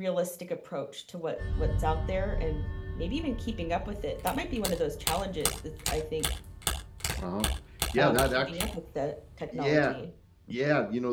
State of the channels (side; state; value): both; identical; correlation 1.00